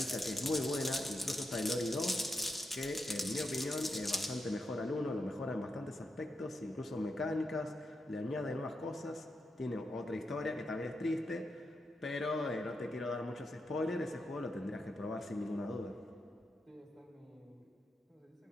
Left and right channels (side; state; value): both; normal; correlation 0.85